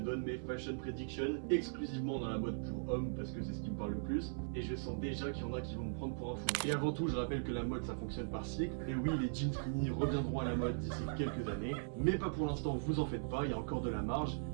mes fashion predictions exclusivement dans la mode pour hommes parce que c'est ce qui me parle le plus et je sens déjà qu'il y en a qui vont me prendre pour un fou. Et avant tout je rappelle que la mode ça fonctionne par cycle et oui les jeans skinny reviendront à la mode d'ici quelques années mais pas pour l'instant, vous en faites pas, il y a encore de la marge,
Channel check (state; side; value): silent; left; 52 dB below the other